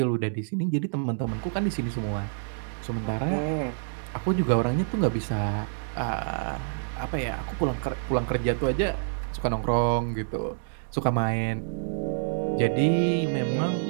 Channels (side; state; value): left; silent; 60 dB below the other